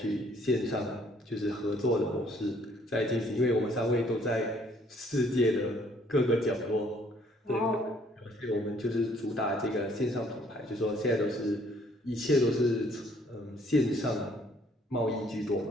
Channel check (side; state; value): both; normal; correlation 0.62